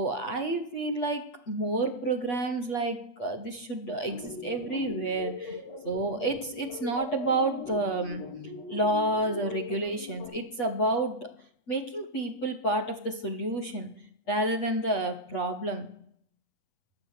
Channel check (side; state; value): right; late; 8.2 ms